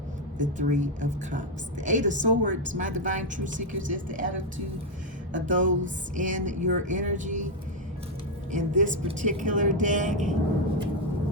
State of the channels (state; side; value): normal; both; correlation 0.03